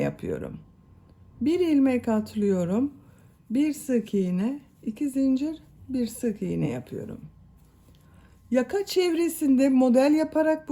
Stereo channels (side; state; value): both; identical; correlation 1.00